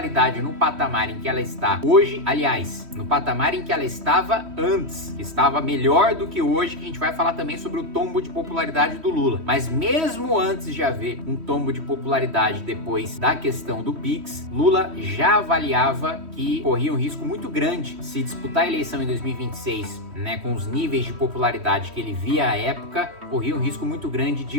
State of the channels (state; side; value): late; left; 3.1 ms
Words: no patamar em que ela está hoje, aliás, no patamar em que ela estava antes, estava melhor do que hoje, que a gente vai falar também sobre o tombo de popularidade do Lula. Mas mesmo antes de haver um tombo de popularidade depois da questão do Pix, Lula já avaliava que corria um risco muito grande se disputar a eleição em 2026, com os níveis de popularidade que ele via à época, corria um risco muito grande